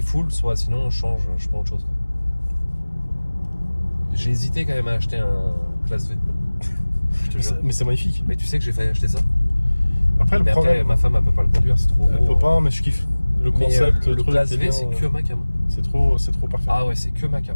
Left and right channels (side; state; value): both; inverted; correlation -1.00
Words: full, soit sinon on change, je prends autre chose. J'ai hésité quand même à acheter un classe V. Je te jure. mais c'est magnifique. Mais tu sais que j'ai failli acheter ça. Après, le Mais problème. après, ma femme elle peut pas le conduire, c'est trop Elle gros. peut pas, mais je kiffe. Le Mais, concept, le truc, classe c'est V, bien, c'est que ma cam. c'est trop parfait. Ah ouais, c'est que ma cam.